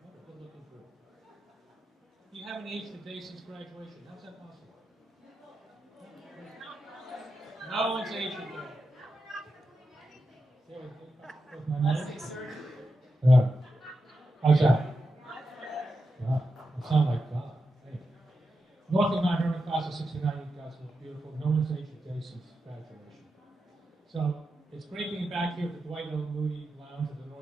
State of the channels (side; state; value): both; normal; correlation 0.88